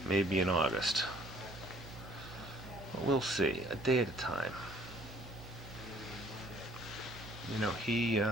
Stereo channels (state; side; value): normal; both; correlation 0.56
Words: maybe in August. But we'll see, a day at a time. You know, he